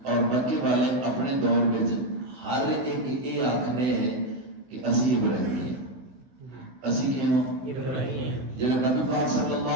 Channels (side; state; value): left; late; 15 ms